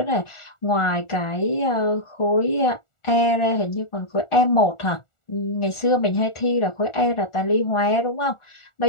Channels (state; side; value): late; right; 1.4 ms